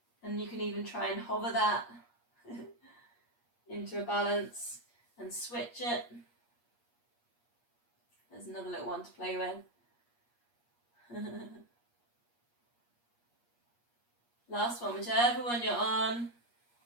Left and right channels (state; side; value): late; right; 8.4 ms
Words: and you can even try and hover that into a balance and switch it. There's another little one to play with. Last one, whichever one you're on.